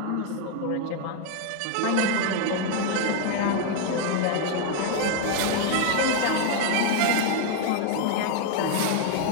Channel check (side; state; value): both; different; correlation 0.00